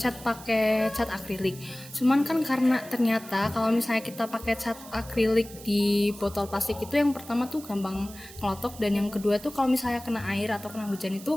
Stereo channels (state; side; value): noise; right; hiss, 17 dB below the sound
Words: pakai cat akrilik. Cuman kan karena ternyata kalau misalnya kita pakai cat akrilik di botol plastik itu yang pertama tuh gampang ngelotok, dan yang kedua tuh kalau misalnya kena air atau kena hujan